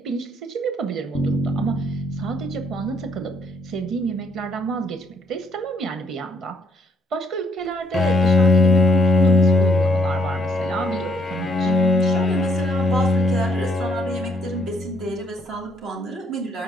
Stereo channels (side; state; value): both; normal; correlation 0.68